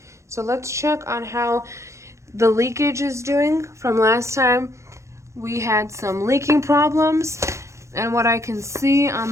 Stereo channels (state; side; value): late; left; 0.14 ms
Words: So let's check on how the leakage is doing from last time. We had some leaking problems, and what I can see